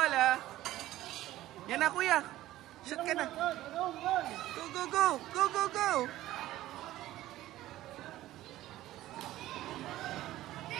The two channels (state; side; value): quieter; left; 15.1 dB